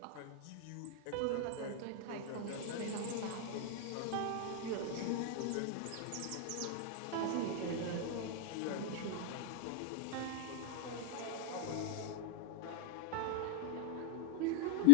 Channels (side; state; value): both; different; correlation 0.00